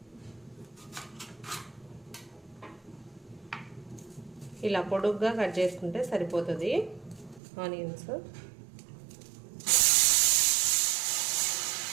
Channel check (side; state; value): left; drops out; at 7.4 s